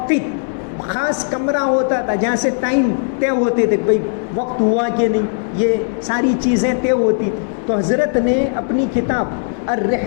خاص کمرہ ہوتا تھا جہاں سے ٹائم طے ہوتے تھے، بھائی وقت ہوا کہ نہیں، یہ ساری چیزیں طے ہوتی تھی. تو حضرت نے اپنی کتاب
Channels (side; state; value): right; silent; digital silence